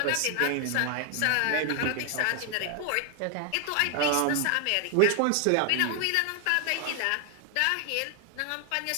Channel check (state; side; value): different; both; correlation 0.00